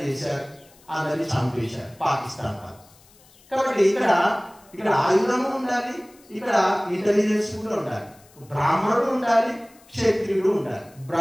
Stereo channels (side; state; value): left; noise; hiss, 28 dB below the sound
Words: చేశారు, అందరినీ చంపేశారు పాకిస్తాన్ వాళ్ళు. కాబట్టి ఇక్కడ ఆయుధము ఉండాలి, ఇక్కడ ఇంటెలిజెన్స్ కూడా ఉండాలి, బ్రాహ్మణుడు ఉండాలి, క్షత్రియుడు ఉండాలి.